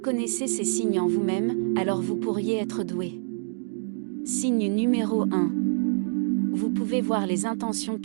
ces signes en vous-même, alors vous pourriez être doué. Signe numéro 1. Vous pouvez voir les intentions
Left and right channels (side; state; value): left; silent; digital silence